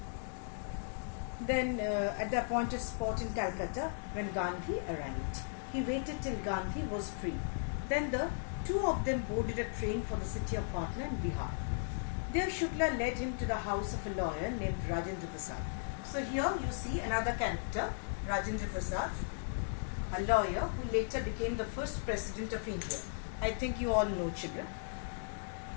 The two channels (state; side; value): silent; right; digital silence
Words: then at the appointed spot in Calcutta when Gandhi arrived. He waited till Gandhi was free. Then the two of them boarded a train for the city of Patna in Bihar. There Shukla led him to the house of a lawyer named Rajendra Prasad. So here you see another character, Rajendra Prasad, a lawyer who later became the first president of India. I think you all know, children.